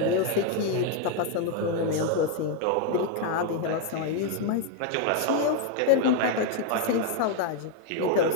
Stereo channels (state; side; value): different; both; correlation 0.01